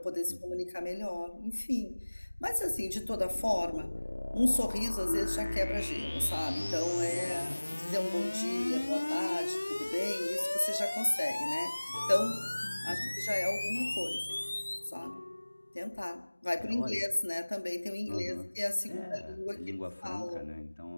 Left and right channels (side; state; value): both; inverted; correlation -1.00